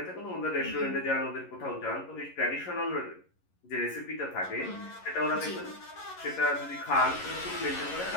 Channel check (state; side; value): late; right; 11 ms